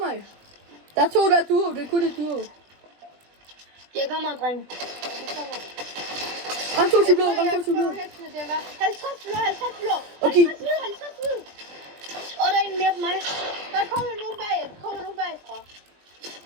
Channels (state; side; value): late; left; 20 ms